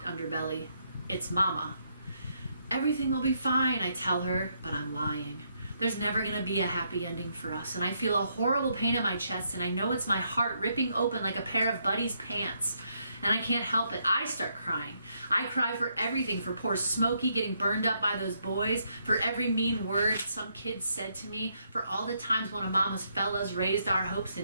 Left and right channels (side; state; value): both; inverted; correlation -0.76